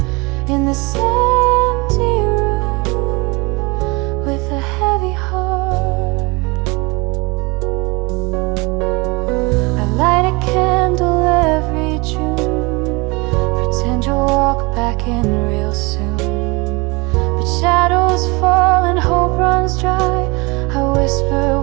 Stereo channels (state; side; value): quieter; left; 26.7 dB